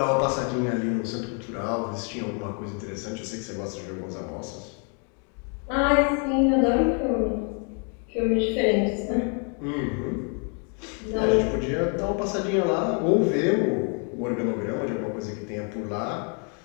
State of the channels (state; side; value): quieter; right; 37.9 dB